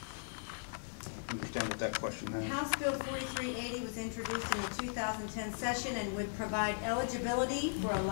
understand what that question is. House Bill 4380 was introduced in the 2010 session and would provide eligibility for a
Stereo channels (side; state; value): right; silent; 53 dB below the other